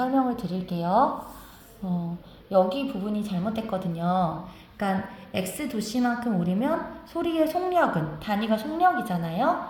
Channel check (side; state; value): both; identical; correlation 1.00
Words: 드릴게요. 여기 부분이 잘못됐거든요. 그러니까 x 도시만큼 오르면 소리의 속력은, 단위가 속력이잖아요.